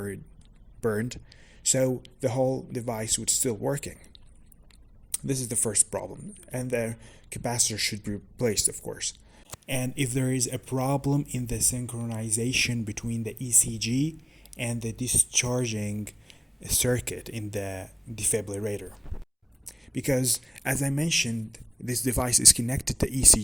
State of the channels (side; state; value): both; identical; correlation 1.00